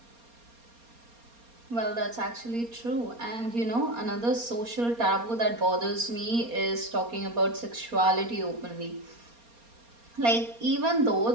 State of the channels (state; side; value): late; left; 4.3 ms